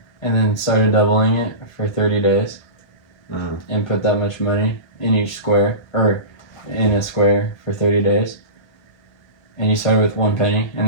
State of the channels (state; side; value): late; right; 1.3 ms